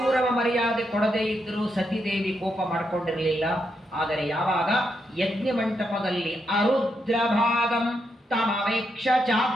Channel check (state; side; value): normal; both; correlation 0.81